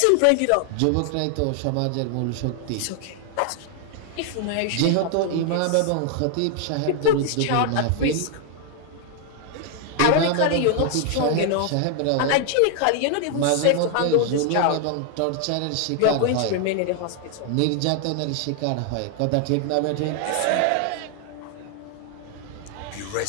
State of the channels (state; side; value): different; both; correlation 0.00